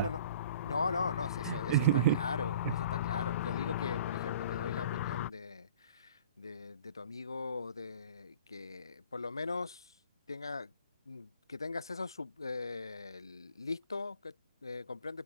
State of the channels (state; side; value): inverted; both; correlation -0.48